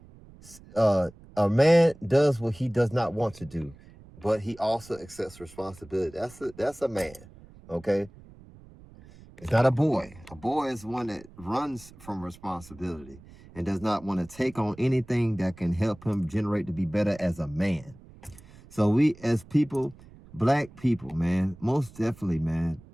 man does what he does not want to do, but he also accepts responsibility. That's a man, okay? It's not a boy. A boy is one that runs from responsibility and does not want to take on anything that can help him generate to be better as a man. So we as people, Black people, man, most definitely, man.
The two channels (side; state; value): right; noise; rumble, 22 dB below the sound